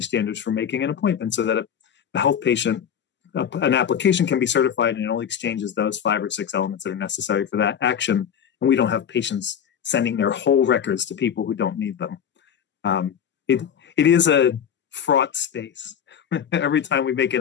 standards for making an appointment so that a health patient, an application can be certified and it only exchanges those 5 or 6 elements that are necessary for that action, and we don't have patients sending their whole records to people who don't need them. It is a fraught space. Every time we make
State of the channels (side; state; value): right; quieter; 8.4 dB